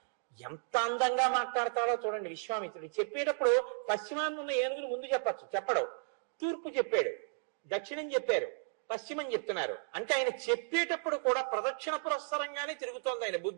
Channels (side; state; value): left; silent; digital silence